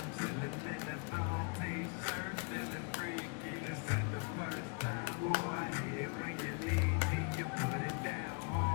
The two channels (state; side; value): quieter; right; 35.8 dB